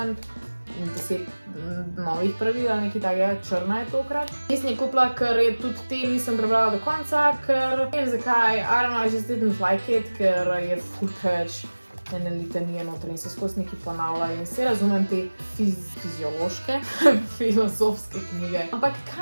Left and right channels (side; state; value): both; inverted; correlation -1.00